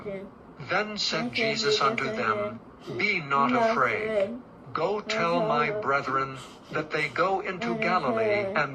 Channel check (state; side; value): identical; both; correlation 1.00